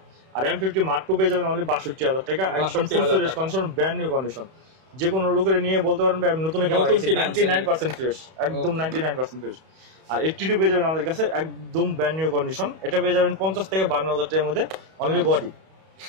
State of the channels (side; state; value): left; late; 31 ms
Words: আর M50 Mark II পেয়ে যাবেন অনলি 62000 টাকা, একদম full fresh condition, brand new condition. যে কোনো লোকের নিয়ে বলতে পারেন আমি নতুন ক্যামেরা 99% ফ্রেশ, একদম 99% ফ্রেশ। আর 82 পেয়ে যাবেন আমাদের কাছে একদম ব্র্যান্ড নিউ কন্ডিশন। এটা পেয়ে যাবেন 50 থেকে 52000 টাকার মধ্যে অনলি বডি।